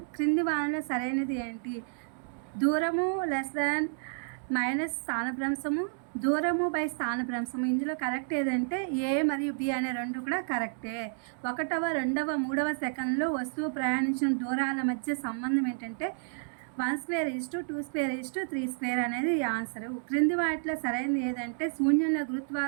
క్రింది వానలో సరైనది ఏంటి? దూరము మైనస్ స్థానభ్రంశము, దూరము బై స్థానభ్రంశము. ఇందులో కరెక్ట్ ఏదంటే ఏ మరియు బి అనే రెండు కూడా కరెక్టే. 1వ, 2వ, 3వ సెకండ్లో వస్తువు ప్రయాణించిన దూరాల మధ్య సంబంధం ఏంటంటే 1/2 2/2 3/2 అనేది ఆన్సరు. క్రింది వాటిలో సరైనది ఏదంటే శూన్యంలో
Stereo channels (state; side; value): silent; left; digital silence